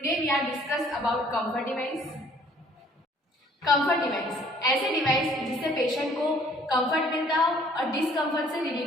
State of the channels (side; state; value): both; normal; correlation 0.59